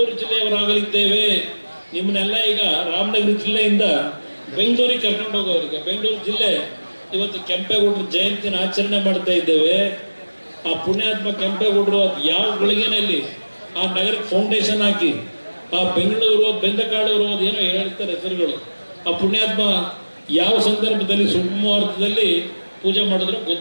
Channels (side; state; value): both; inverted; correlation -1.00